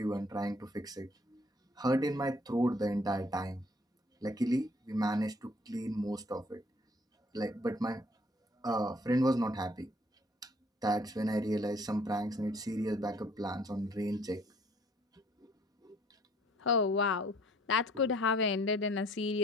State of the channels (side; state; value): both; normal; correlation 0.59